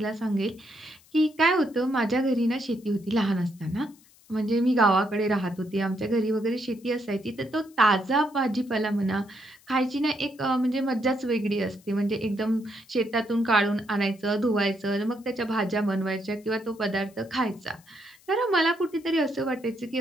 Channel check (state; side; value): noise; left; hiss, 28 dB below the sound